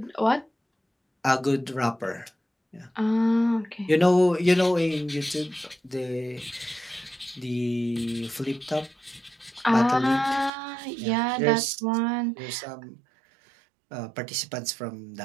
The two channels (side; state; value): left; drops out; at 10.5 s